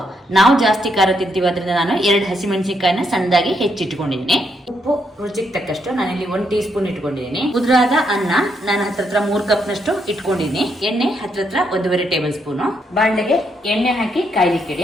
ನಾವು ಜಾಸ್ತಿ ಖಾರ ತಿಂತೀವಿ, ಅದರಿಂದ ನಾನು 2 ಹಸಿಮೆಣಸಿನಕಾಯಿನ ಸಣ್ಣದಾಗಿ ಹೆಚ್ಚಿಟ್ಕೊಂಡಿದ್ದೀನಿ. ಉಪ್ಪು ರುಚಿಗೆ ತಕ್ಕಷ್ಟು ನಾನಿಲ್ಲಿ 1 ಟೀ ಸ್ಪೂನ್ ಇಟ್ಕೊಂಡಿದ್ದೀನಿ. ಉದುರಾದ ಅನ್ನ ನಾನು ಹತ್ರ 3 ಕಪ್ ನಷ್ಟು ಇಟ್ಕೊಂಡಿದ್ದೀನಿ. ಎಣ್ಣೆ ಹತ್ರ 1.5 ಟೇಬಲ್ ಸ್ಪೂನು. ಬಾಣಲೆಗೆ ಎಣ್ಣೆ ಹಾಕಿ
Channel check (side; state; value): both; normal; correlation 0.77